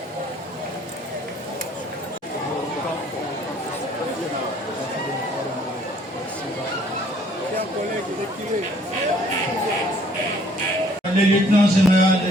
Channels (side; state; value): both; normal; correlation 0.60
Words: Le lieutenant général